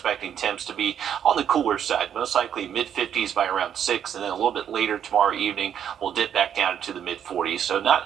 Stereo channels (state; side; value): quieter; left; 9.1 dB